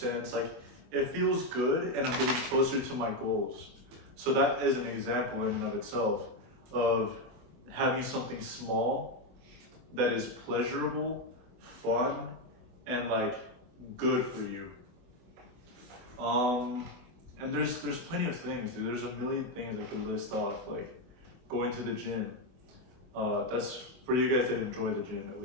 like it feels good and I'm getting closer to my goals. So that is an example in and of itself of having something small that is pleasurable, fun, and like good for you. And there's plenty of things, dude. There's a million things I could list off, like going to the gym. That's for you guys that enjoy the gym at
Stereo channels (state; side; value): late; left; 24 ms